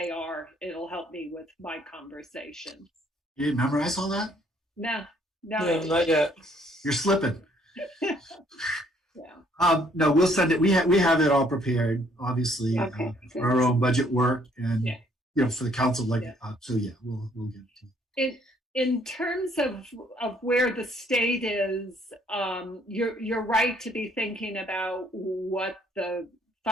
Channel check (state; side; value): normal; both; correlation 0.65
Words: are? It'll help me with my conversations. You didn't memorize all that? No, not yet. You're slipping. Yeah. No, we'll send it. We have it all prepared, obviously, for our own budget work, and for the council. We'll get it to you. In terms of where the state is, you're right to be thinking about what the